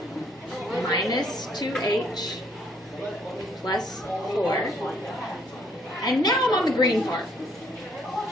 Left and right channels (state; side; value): normal; both; correlation 0.66